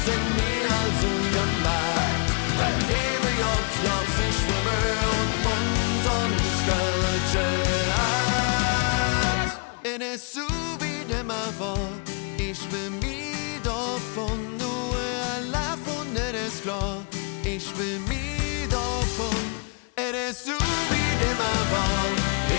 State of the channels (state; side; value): quieter; right; 36.0 dB